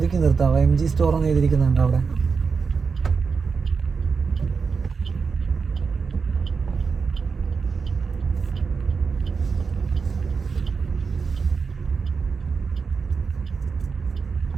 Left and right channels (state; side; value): quieter; left; 5.2 dB